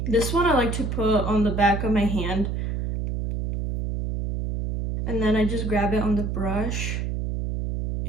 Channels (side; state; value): right; noise; hum, 2 dB below the sound